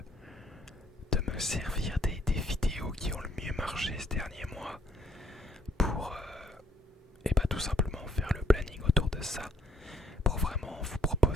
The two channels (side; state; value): both; normal; correlation 0.66